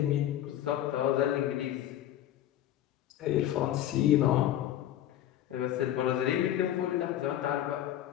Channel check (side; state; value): right; quieter; 12.2 dB